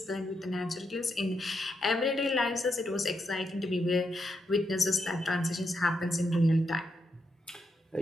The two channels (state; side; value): normal; both; correlation 0.82